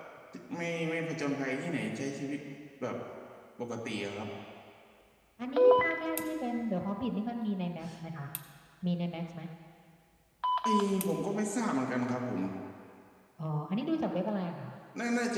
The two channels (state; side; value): identical; both; correlation 1.00